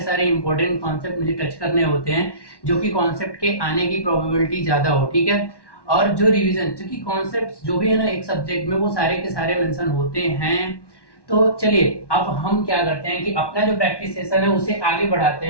इंपॉर्टेंट कॉन्सेप्ट मुझे टच करने होते हैं, जो कि कॉन्सेप्ट के आने की प्रोबेबिलिटी ज्यादा हो। ठीक है, और जो रिवीजन, क्योंकि कॉन्सेप्ट जो भी है ना एक सब्जेक्ट में, वो सारे के सारे मेंशन होते हैं। तो चलिए अब हम क्या करते हैं कि अपना जो प्रैक्टिस सेशन है उसे आगे बढ़ाते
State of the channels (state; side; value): late; right; 1.1 ms